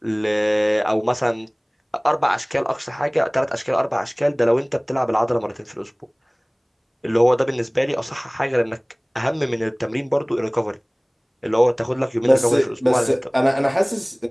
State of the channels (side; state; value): both; identical; correlation 1.00